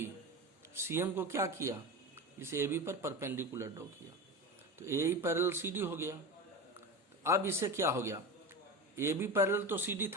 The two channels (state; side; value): normal; both; correlation 0.25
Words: सीएम को क्या किया, इस एबी पर परपेंडिकुलर ड्रॉ किया. तो ए पैरेलल सीडी हो गया. अब इसे क्या हो गया, ए बी पैरेलल तो सी डी